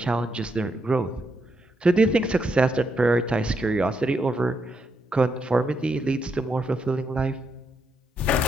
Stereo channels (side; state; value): both; normal; correlation 0.79